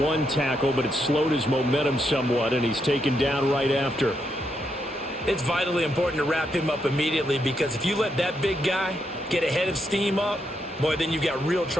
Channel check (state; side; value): normal; both; correlation 0.80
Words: one tackle, but it slowed his momentum somewhat, and he's taken down right after. It's vitally important to wrap him up immediately, because if you let that big guy get a head of steam up, boy, then you've got real